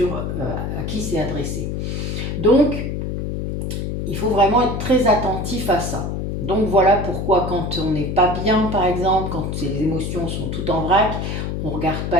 à qui c'est adressé. Donc, il faut vraiment être très attentif à ça. Donc voilà pourquoi quand on n'est pas bien, par exemple, quand les émotions sont toutes en vrac, on ne regarde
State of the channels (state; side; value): noise; left; hum, 3 dB below the sound